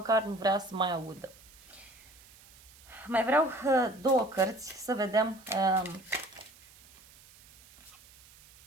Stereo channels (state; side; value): noise; right; hiss, 24 dB below the sound